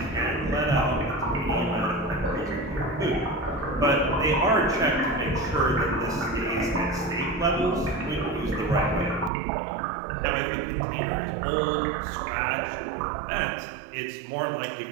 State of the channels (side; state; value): left; drops out; at 9.3 s